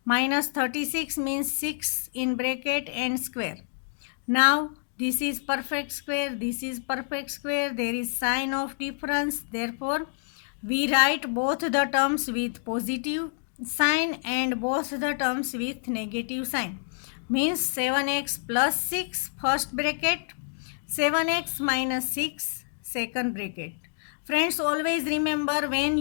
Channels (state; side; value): silent; right; digital silence